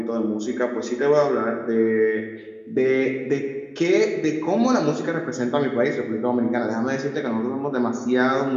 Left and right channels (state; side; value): identical; both; correlation 1.00